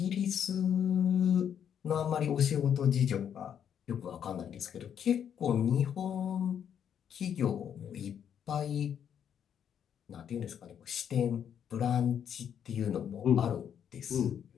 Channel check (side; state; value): right; quieter; 8.7 dB